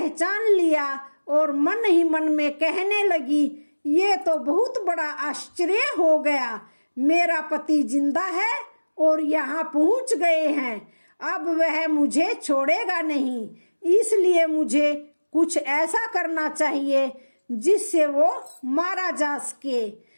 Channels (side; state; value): both; inverted; correlation -1.00